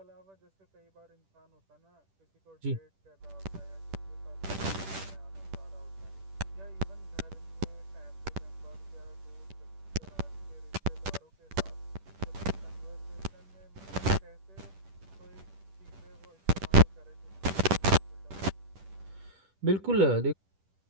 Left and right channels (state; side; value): late; left; 10 ms